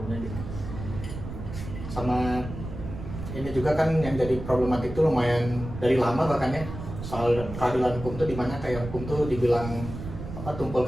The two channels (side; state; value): right; noise; rumble, 9 dB below the sound